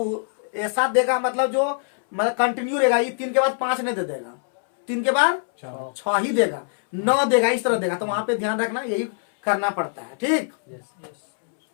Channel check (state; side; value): silent; right; 64 dB below the other